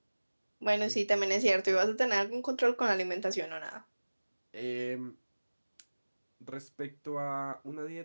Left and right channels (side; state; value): both; inverted; correlation -1.00